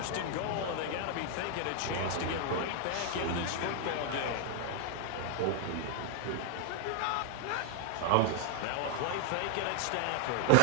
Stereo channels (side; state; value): both; different; correlation 0.00